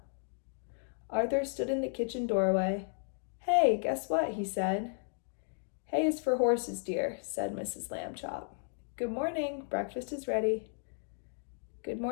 Arthur stood in the kitchen doorway. "Hey, guess what?" he said. "Hay is for horses, dear," said Mrs. Lambchop. "Good morning. Breakfast is ready." "Good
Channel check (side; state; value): right; silent; digital silence